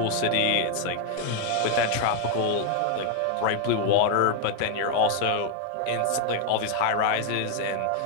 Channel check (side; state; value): both; different; correlation 0.01